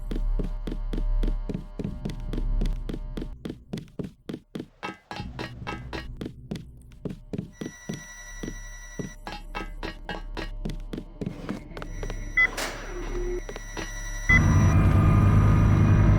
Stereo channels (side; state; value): both; identical; correlation 1.00